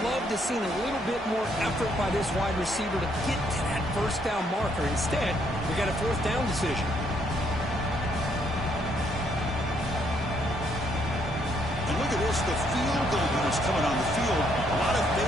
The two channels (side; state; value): both; normal; correlation 0.71